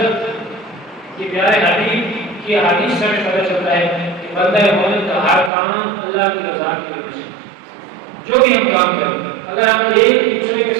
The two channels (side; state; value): left; drops out; at 5.5 s